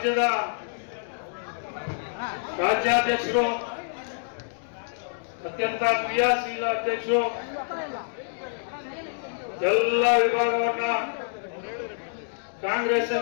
ರಾಜ್ಯಾಧ್ಯಕ್ಷರು, ಅತ್ಯಂತ ಕ್ರಿಯಾಶೀಲ ಅಧ್ಯಕ್ಷರು, ಎಲ್ಲ ವಿಭಾಗವನ್ನ ಕಾಂಗ್ರೆಸ್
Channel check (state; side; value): silent; right; digital silence